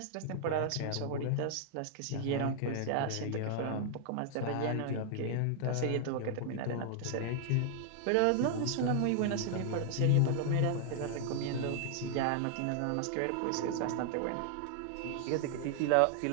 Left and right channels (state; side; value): different; both; correlation 0.00